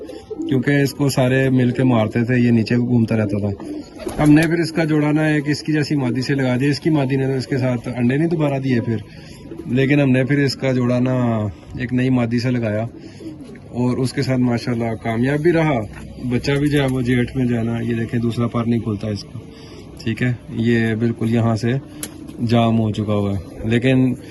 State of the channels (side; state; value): both; identical; correlation 1.00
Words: क्योंकि इसको सारे मिल के मारते थे, ये नीचे घूमता रहता था। हमने फिर इसका जोड़ा ना एक इसकी जैसी मादी से लगा दिया। इसकी मादी ने तो इसके साथ अंडे नहीं दोबारा दिए फिर, लेकिन हमने फिर इसका जोड़ा ना एक नई मादी से लगाया और उसके साथ माशाल्लाह कामयाब भी रहा। बच्चा भी जो है वो जेठ में जाना, ये देखें दूसरा पर नहीं खुलता इसका, ठीक है। ये बिल्कुल यहाँ से जाम हो चुका हुआ है, लेकिन